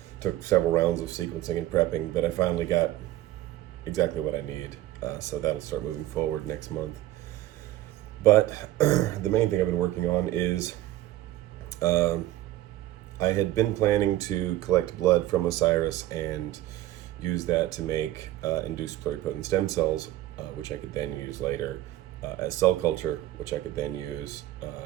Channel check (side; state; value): left; quieter; 14.9 dB